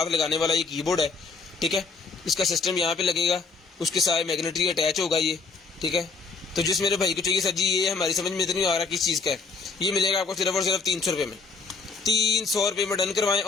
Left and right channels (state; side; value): quieter; right; 4.4 dB